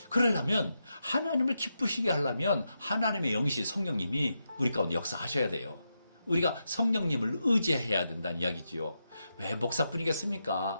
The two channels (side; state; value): both; inverted; correlation -0.86